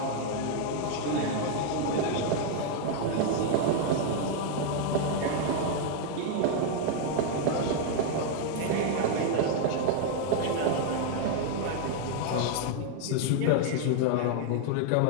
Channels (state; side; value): different; both; correlation 0.00